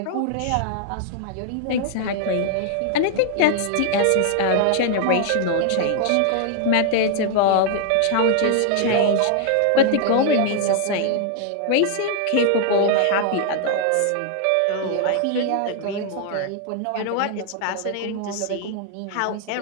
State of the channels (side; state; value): both; different; correlation 0.00